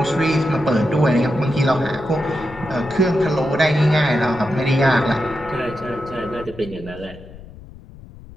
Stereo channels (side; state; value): left; noise; rumble, 18 dB below the sound